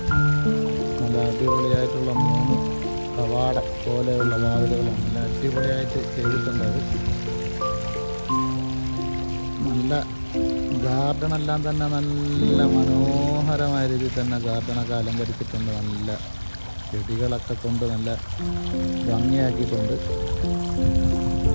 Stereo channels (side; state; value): both; inverted; correlation -1.00